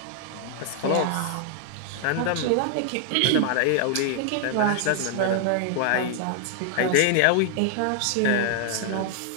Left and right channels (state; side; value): different; both; correlation 0.00